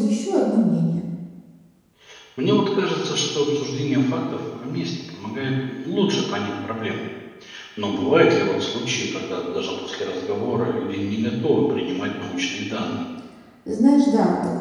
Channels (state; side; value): identical; both; correlation 1.00